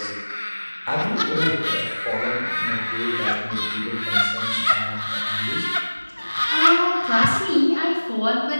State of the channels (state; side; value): inverted; both; correlation -1.00